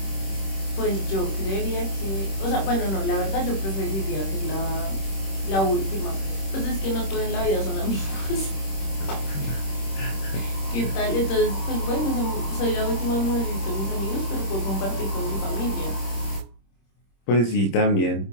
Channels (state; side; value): late; right; 26 ms